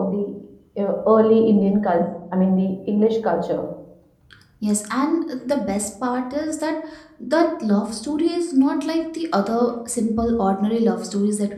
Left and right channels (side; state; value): both; identical; correlation 1.00